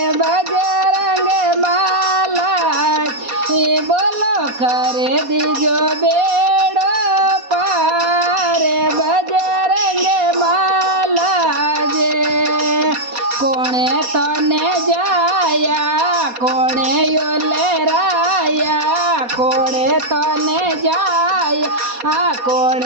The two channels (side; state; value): left; late; 4.2 ms